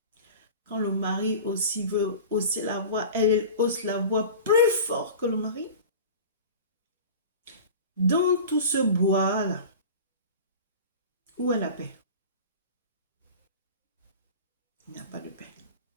Quand le mari aussi veut hausser la voix, elle hausse la voix plus fort que le mari. Dans tout ce bois-là, où est la paix? Il n'y a pas de paix.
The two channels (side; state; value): both; inverted; correlation -0.36